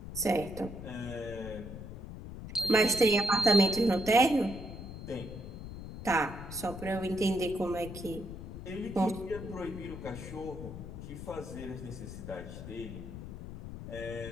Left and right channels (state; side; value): noise; left; rumble, 10 dB below the sound